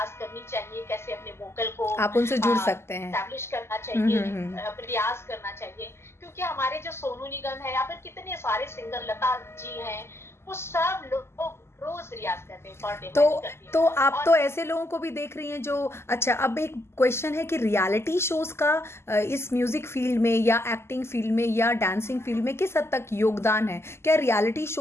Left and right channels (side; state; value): right; late; 0.12 ms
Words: करनी चाहिए, कैसे अपने वोकल को आप उनसे जुड़ सकते हैं। एस्टैब्लिश करना चाहिए, हम्म। रियाज करना चाहिए, क्योंकि हमारे जो सोनू निगम है या फिर कितने सारे सिंगर, लता जी हैं, वो सब लोग रोज रियाज करते हैं, पर डे तो मैं करती हूँ। तो आप और तो ऐसे लोगों को भी देख रही हैं जो, अच्छा अब एक क्वेश्चन है कि रियलिटी शोज का इस म्यूजिक फील्ड में या एक्टिंग फील्ड में या डांसिंग फील्ड में किस हद तक योगदान है? क्या रियलिटी